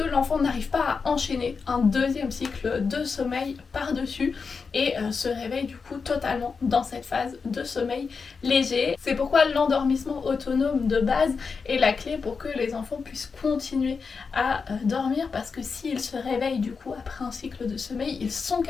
l'enfant n'arrive pas à enchaîner un deuxième cycle de sommeil par-dessus et se réveille du coup totalement dans cette phase de sommeil léger. C'est pourquoi l'endormissement autonome de base est la clé pour que les enfants puissent continuer à dormir, parce que s'ils se réveillent du coup après un cycle de sommeil, ils sont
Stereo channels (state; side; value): quieter; right; 5.1 dB